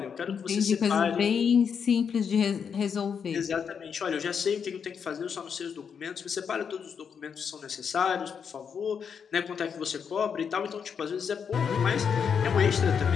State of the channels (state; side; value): quieter; right; 6.8 dB